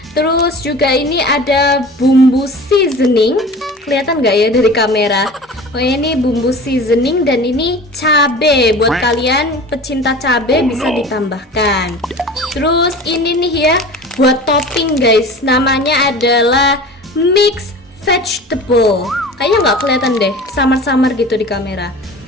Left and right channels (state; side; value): normal; both; correlation 0.38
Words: Terus juga ini ada bumbu seasoning, kelihatan nggak ya dari kamera? Oh ini bumbu seasoning dan ini cabe. Buat kalian pecinta cabe bisa ditambahkan. Terus ini nih ya, buat topping guys, namanya adalah mix vegetable. Kayaknya nggak kelihatan deh, samar-samar gitu di kamera.